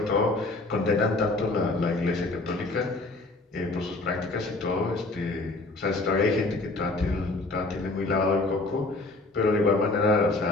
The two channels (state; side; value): quieter; right; 3.1 dB